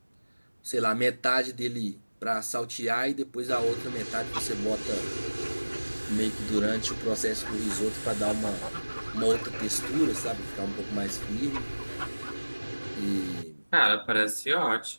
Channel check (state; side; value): inverted; both; correlation -1.00